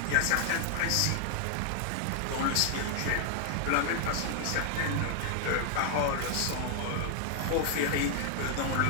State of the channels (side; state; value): both; different; correlation 0.00